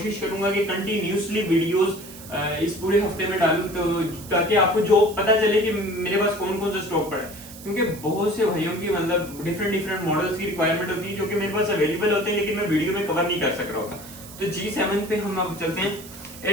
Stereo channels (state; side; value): noise; right; hiss, 16 dB below the sound